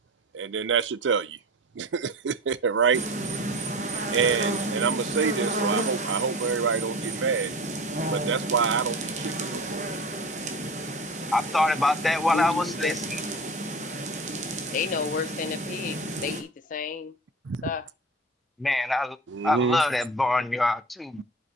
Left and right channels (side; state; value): both; normal; correlation 0.32